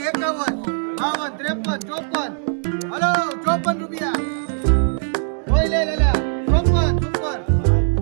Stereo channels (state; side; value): silent; left; digital silence